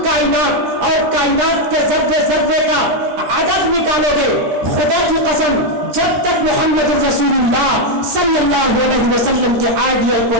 कायनात और कायनात के जर्रे जर्रे का अदद निकालोगे, खुदा की कसम जब तक मोहम्मद रसूलुल्लाह सल्लल्लाहु अलैहि वसल्लम के आइडियल को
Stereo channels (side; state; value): left; late; 13 ms